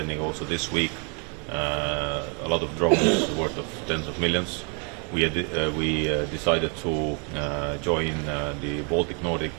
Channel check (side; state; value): left; quieter; 36.9 dB